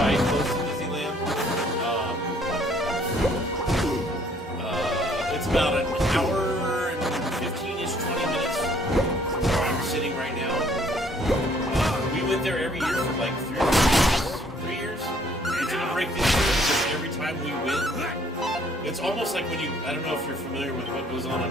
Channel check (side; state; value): both; normal; correlation 0.62